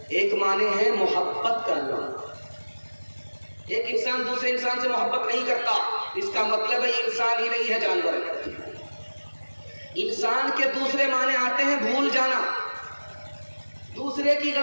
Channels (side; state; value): both; inverted; correlation -1.00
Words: ایک معنی ہے محبت کرنا۔ ایک انسان دوسرے انسان سے محبت نہیں کرتا، اس کا مطلب ہے یہ انسان ہی نہیں ہے، جانور ہے۔ انسان کے دوسرے معنی آتے ہیں بھول جانا۔ دوسرے کی